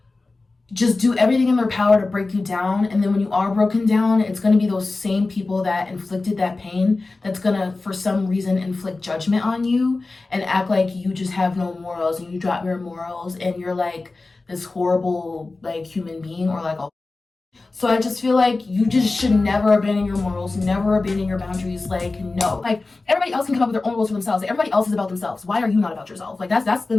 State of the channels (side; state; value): right; quieter; 3.5 dB